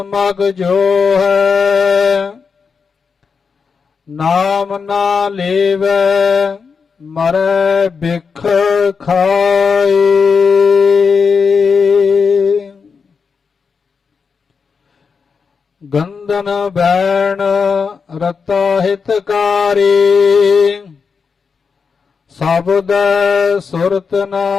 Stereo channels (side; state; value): right; quieter; 5.5 dB